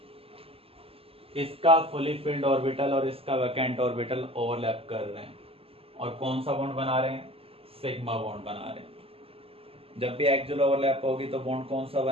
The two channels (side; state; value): left; late; 0.28 ms